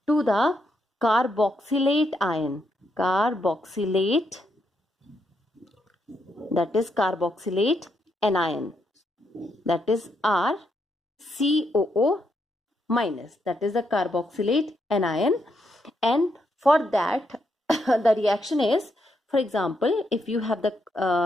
to the carboxylate ion. Carboxylate, that is carboxylate anion, that is RCOO minus, that is the carboxylate anion. And for that the reaction is, for example, if you have the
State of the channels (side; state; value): both; normal; correlation 0.79